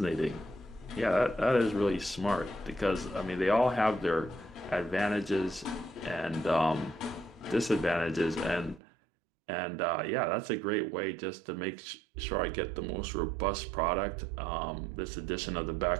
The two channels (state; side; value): drops out; left; at 8.8 s